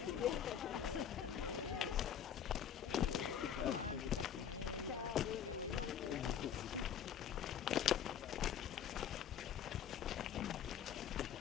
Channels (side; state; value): right; quieter; 8.8 dB